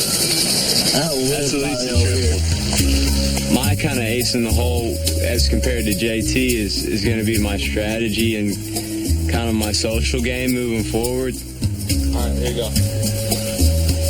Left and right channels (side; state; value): both; identical; correlation 1.00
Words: That's at least a triple. My kind of ace in the hole as compared to JT is going to be my strategy and kind of my social game moving forward. All right, here you go.